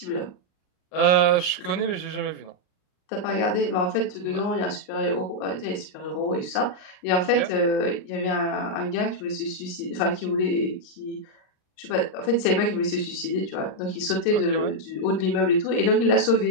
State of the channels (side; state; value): right; late; 39 ms